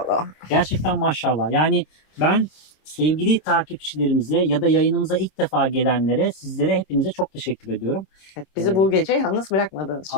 Gerçekten maşallah. Yani ben sevgili takipçilerimize ya da yayınımıza ilk defa gelenlere, sizlere, hepinize çok teşekkür ediyorum. Evet, bizi bu gece yalnız bırakmadığınız için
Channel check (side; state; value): right; late; 26 ms